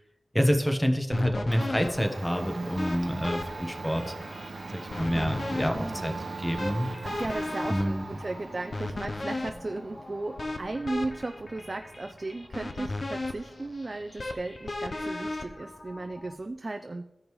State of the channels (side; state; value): both; normal; correlation 0.98